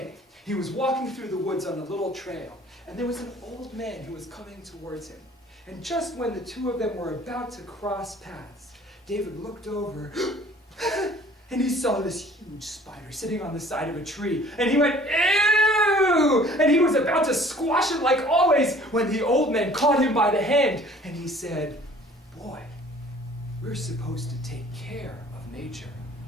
he was walking through the woods on a little trail, and there was an old man who was coming towards him. And just when the two of them were about to cross paths, David looked over, and he saw this huge spider sitting on the side of a tree, and he went, ew! And he was about to squash it like always, when the old man caught him by the hand, and he said, boy, we're supposed to take care of nature,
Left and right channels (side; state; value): both; normal; correlation 0.52